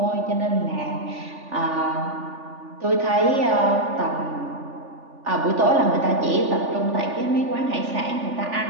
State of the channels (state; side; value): late; left; 3.4 ms